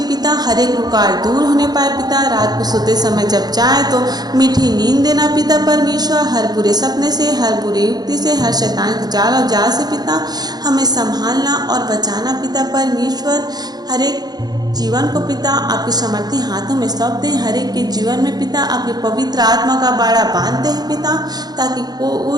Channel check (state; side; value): late; left; 0.19 ms